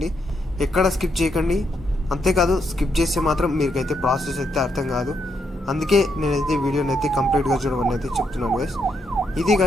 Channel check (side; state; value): both; normal; correlation 0.78